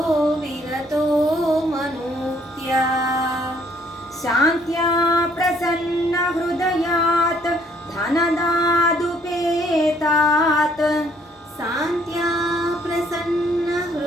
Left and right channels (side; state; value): both; normal; correlation 0.64